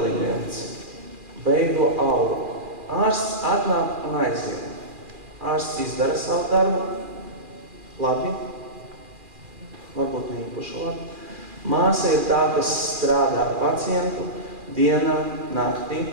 veido auru. Ārsts atnāk un aiziet. Ārsts izdara savu darbu, labi, varbūt ne īpaši labi. Māsa ir tā, kas strādā ar pacientu dienā, naktī,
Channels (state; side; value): late; left; 2.4 ms